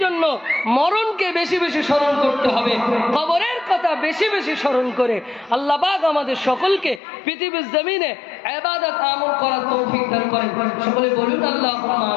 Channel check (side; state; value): right; drops out; at 7.0 s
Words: জন্য মরণকে বেশি বেশি স্মরণ করতে হবে, কবরের কথা বেশি বেশি স্মরণ করে আল্লাহ পাক আমাদের সকলকে পৃথিবীর জমিনে ইবাদত আমল করার তৌফিক দান করেন। সকলে বলুন আল্লাহুম্মা